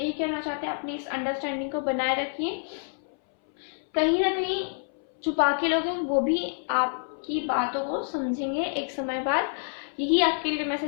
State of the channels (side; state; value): right; silent; 60 dB below the other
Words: कहना चाहते हैं अपनी इस अंडरस्टैंडिंग को बनाए रखिए। कहीं ना कहीं छुपा के लोग हैं वो भी आपकी बातों को समझेंगे एक समय बाद। यही आपके लिए